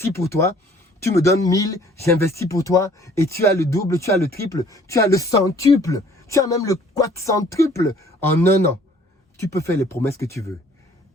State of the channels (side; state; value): both; normal; correlation 0.56